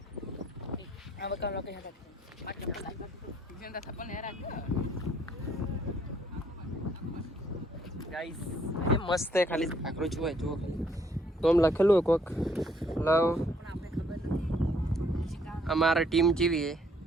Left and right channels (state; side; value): normal; both; correlation 0.66